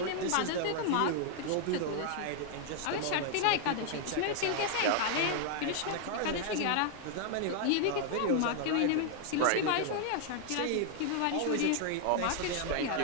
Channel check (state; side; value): different; both; correlation 0.00